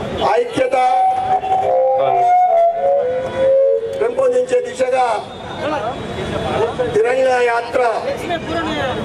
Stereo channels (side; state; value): both; identical; correlation 1.00